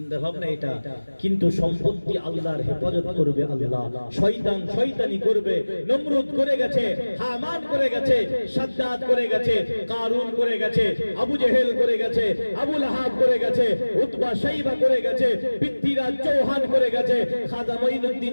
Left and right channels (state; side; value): inverted; both; correlation -1.00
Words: ভাবনা এটা। কিন্তু সম্পত্তি আল্লাহর হেফাজত করবে আল্লাহ। শয়তান শয়তানি করবে। নমরুদ করে গেছে, হামান করে গেছে, সাদ্দাত করে গেছে, কারুন করে গেছে, আবু জেহেল করে গেছে, আবু লাহাব করে গেছে, উতবা শাইবা করে গেছে, পৃথ্বীরাজ চৌহান করে গেছে খাজা মঈনুদ্দিন